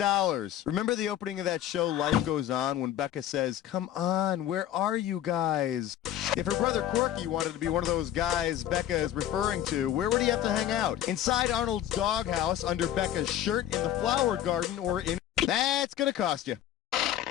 Remember the opening of that show, Life Goes On, when Becca says, "Come on, where are you guys?" If her brother Corky wanted to be one of those guys Becca is referring to, where would he have to hang out? Inside Arnold's doghouse, under Becca's shirt, in the flower garden, or in... That's going to cost you.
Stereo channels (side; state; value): right; quieter; 11.7 dB